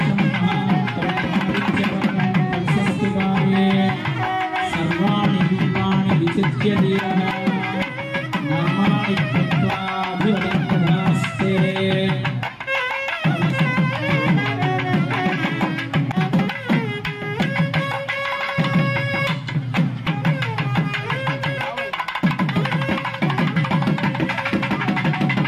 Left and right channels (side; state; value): both; identical; correlation 1.00